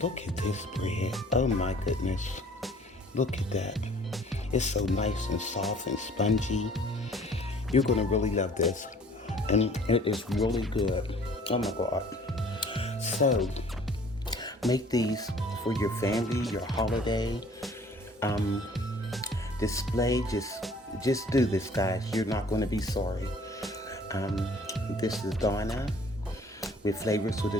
look at this bread. Oh my goodness. Look at that. It's so nice and soft and spongy. You're going to really love this. And it is really good. Oh my God. So make these for your family, your holiday display. Just do this, guys. You're not going to be sorry. This is Donna with Flavors with a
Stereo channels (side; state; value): both; normal; correlation 0.53